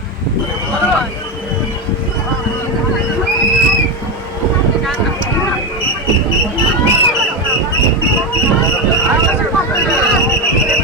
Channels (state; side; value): normal; both; correlation 0.13